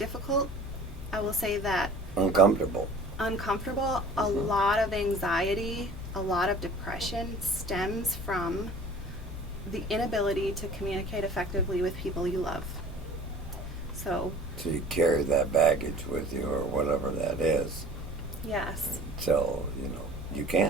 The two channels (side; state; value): both; normal; correlation 0.46